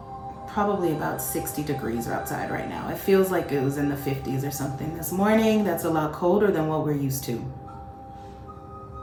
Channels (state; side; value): identical; both; correlation 1.00